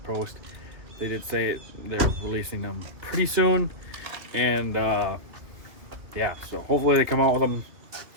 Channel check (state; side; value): late; left; 2.4 ms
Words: post, they did say they're releasing them pretty soon. And yeah, so hopefully they come out with them